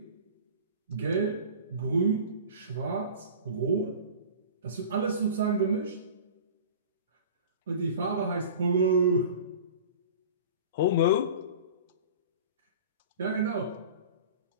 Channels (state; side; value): inverted; both; correlation -0.38